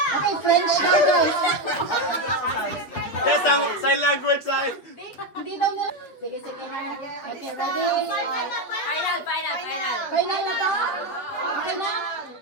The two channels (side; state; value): right; late; 8.1 ms